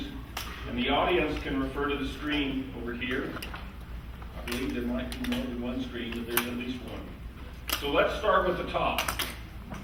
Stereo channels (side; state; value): both; identical; correlation 1.00